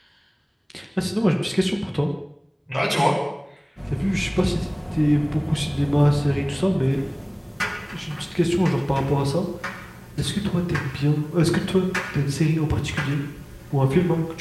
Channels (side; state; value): both; identical; correlation 1.00